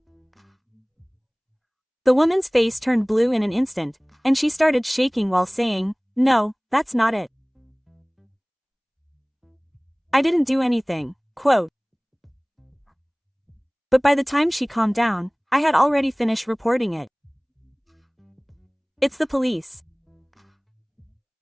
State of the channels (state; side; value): identical; both; correlation 1.00